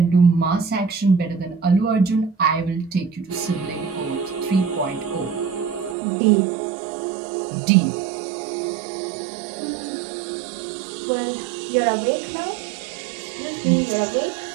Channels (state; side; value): drops out; left; at 6.0 s